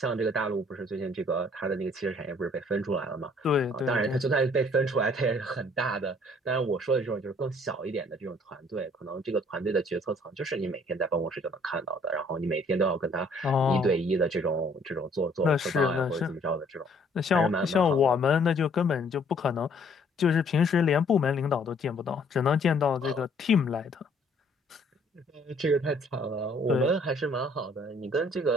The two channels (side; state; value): both; normal; correlation 0.61